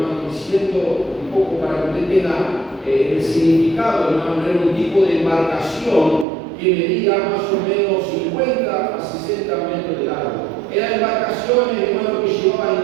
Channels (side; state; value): left; drops out; at 6.2 s